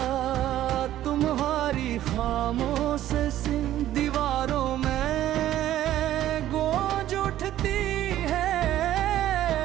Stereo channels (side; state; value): left; quieter; 13.0 dB